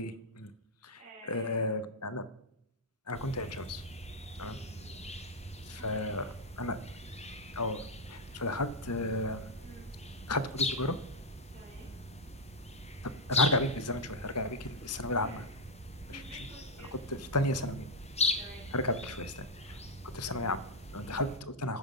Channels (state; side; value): normal; both; correlation -0.01